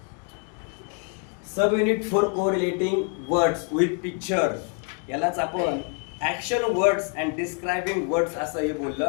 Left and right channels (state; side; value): quieter; right; 38.3 dB